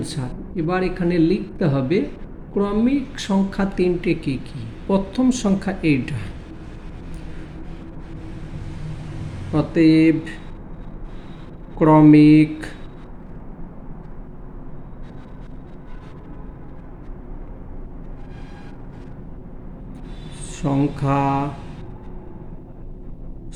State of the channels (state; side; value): identical; both; correlation 1.00